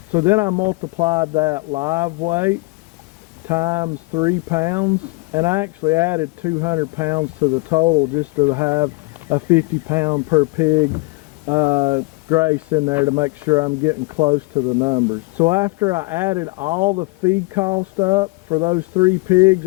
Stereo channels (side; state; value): right; quieter; 25.0 dB